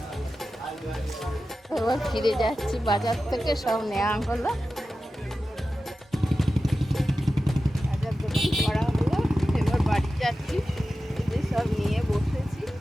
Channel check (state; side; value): normal; both; correlation 0.93